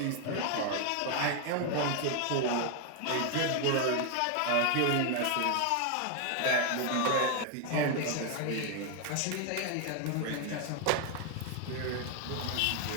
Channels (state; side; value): different; both; correlation 0.01